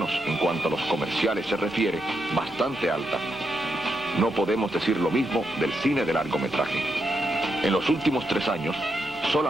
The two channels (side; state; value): both; normal; correlation 0.83